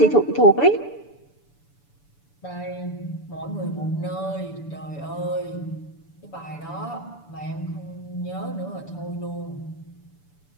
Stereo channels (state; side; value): late; right; 6.9 ms